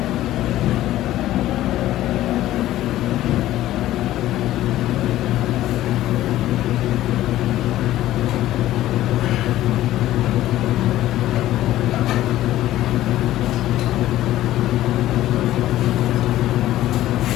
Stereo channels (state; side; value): quieter; right; 14.4 dB